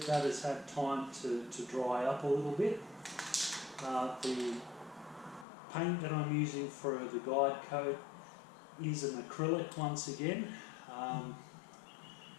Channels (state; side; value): drops out; right; at 5.5 s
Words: that has had time to dry up a little bit. The paint that I'm using for the guide coat is an acrylic once again. I'm